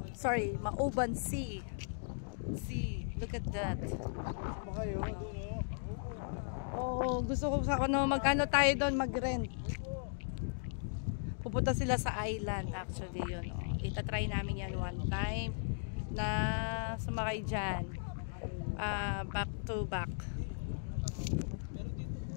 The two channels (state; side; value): silent; right; digital silence